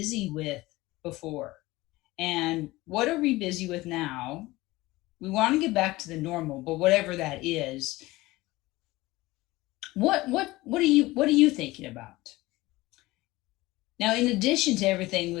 with before? And what are we busy with now? We want to get back to the normal, but whatever that is, what are you thinking about? Now, in addition to everything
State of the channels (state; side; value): quieter; right; 19.5 dB